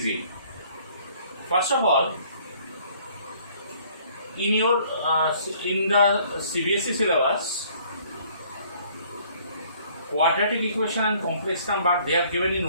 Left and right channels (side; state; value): both; inverted; correlation -0.59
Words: First of all, in the CBSE syllabus, quadratic equation and complex number they are given in